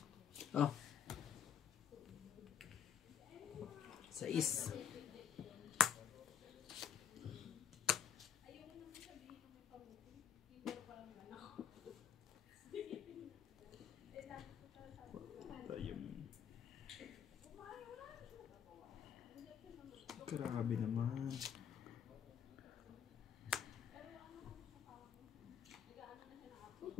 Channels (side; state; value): right; quieter; 8.1 dB